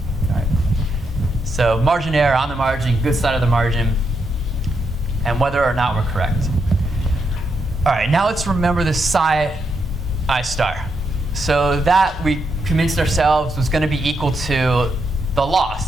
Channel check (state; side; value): normal; both; correlation 0.81